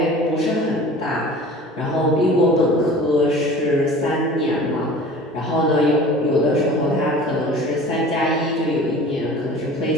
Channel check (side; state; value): both; normal; correlation 0.42